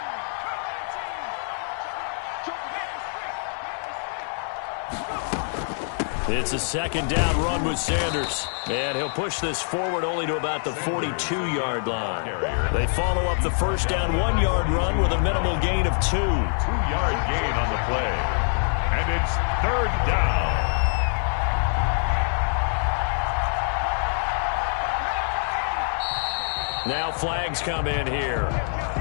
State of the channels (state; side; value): silent; right; 61 dB below the other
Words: It's a second down run with Sanders. And he'll push this forward only to about the 42-yard line. They follow up the first down 1-yard run with a minimal gain of 2. 2-yard gain on the play. And it's 3rd down. Now flags come in here.